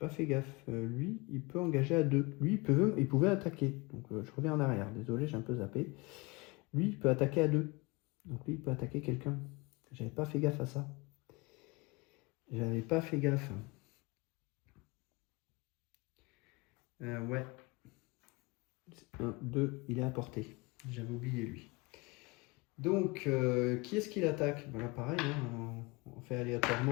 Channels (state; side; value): quieter; right; 25.5 dB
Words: fait gaffe. Lui, il peut engager à 2. Lui, il pouvait attaquer. Donc, je reviens en arrière. Désolé, j'ai un peu zappé. Lui, il peut attaquer à 2. Donc, lui, il peut attaquer quelqu'un. J'avais pas fait gaffe à ça. J'avais pas fait gaffe. Ouais. 1, 2, il est à portée. J'avais oublié lui. Donc, qui est-ce qu'il attaque? Voilà, pareil, hein, on fait